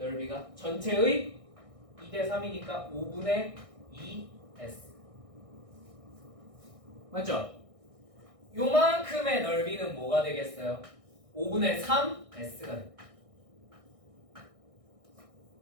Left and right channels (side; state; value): left; late; 1.6 ms